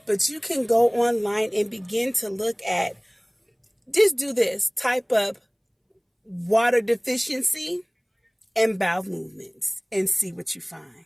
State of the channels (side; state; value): both; identical; correlation 1.00